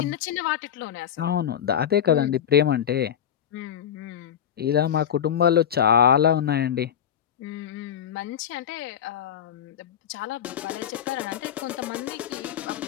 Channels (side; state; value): right; quieter; 9.2 dB